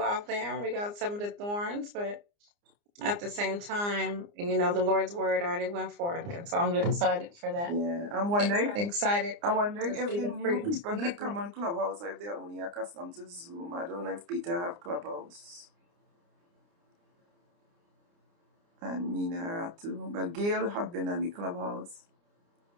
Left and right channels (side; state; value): left; late; 29 ms